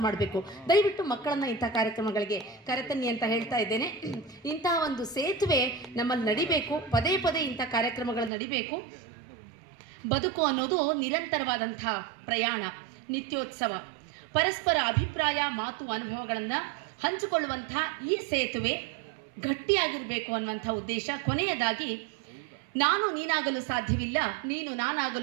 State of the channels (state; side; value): drops out; left; at 8.3 s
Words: ಮಾಡಬೇಕು. ದಯವಿಟ್ಟು ಮಕ್ಕಳನ್ನು ಇಂಥ ಕಾರ್ಯಕ್ರಮಗಳಿಗೆ ಕರೆತನ್ನಿ ಅಂತ ಹೇಳ್ತಾ ಇದ್ದೇನೆ. ಇಂತಹ ಒಂದು ಸೇತುವೆ ನಮ್ಮಲ್ಲಿ ನಡಿಬೇಕು. ಪದೇ ಪದೇ ಇಂಥ ಕಾರ್ಯಕ್ರಮಗಳು ನಡಿಬೇಕು. ಬದುಕು ಅನ್ನೋದು ನಿರಂತರವಾದಂಥ ಪ್ರಯಾಣ, ನಿತ್ಯೋತ್ಸವ. ಪರಸ್ಪರ ಅಭಿಪ್ರಾಯ, ಮಾತು, ಅನುಭವಗಳನ್ನು ಹಂಚಿಕೊಳ್ಳುವಂಥ ಈ ಸೇತುವೆ ಗಟ್ಟಿಯಾಗಿರಬೇಕು ಅನ್ನುವಂಥ ಉದ್ದೇಶ. ಕೊನೆಯದಾಗಿ, ನಾನು ನೀನಾಗಲು ಸಾಧ್ಯವಿಲ್ಲ, ನೀನು